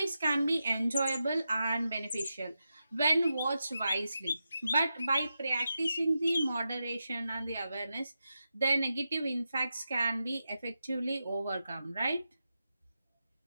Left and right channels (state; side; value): inverted; both; correlation -0.89